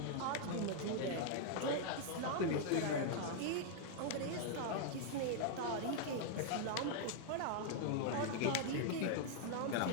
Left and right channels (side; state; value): both; different; correlation -0.01